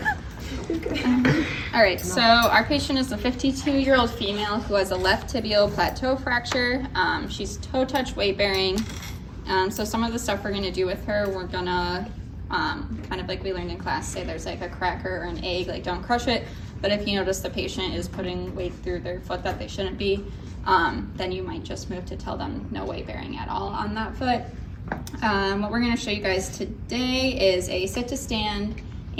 All right, so our patient is a 52-year-old female who has a left tibial plateau fracture. She's toe touch weight bearing. So some of the stuff we're gonna do with her, we're gonna, kind of like we learned in class, say there's like a cracker or an egg, like don't crush it. But if you notice the patient is putting weight through their foot that they shouldn't be, then you might just move to tell them no weight bearing at all on that foot. What we're gonna show you guys today is a sit to stand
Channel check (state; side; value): identical; both; correlation 1.00